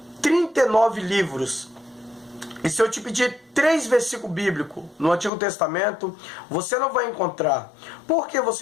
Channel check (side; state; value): right; drops out; at 5.3 s